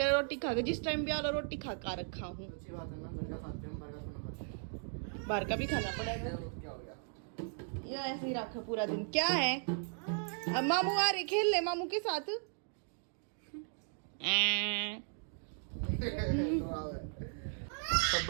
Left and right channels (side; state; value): left; silent; 53 dB below the other